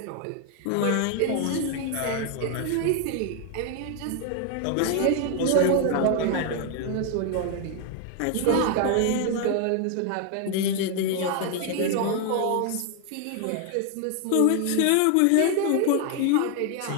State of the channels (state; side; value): different; both; correlation 0.01